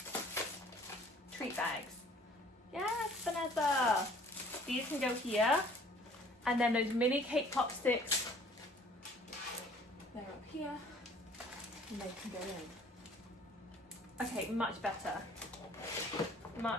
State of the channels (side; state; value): both; normal; correlation 0.54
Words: Treat bags. Yes, Vanessa. These can go here. And then those mini cake pop sticks, they're up here. And they can go in. Okay, much better.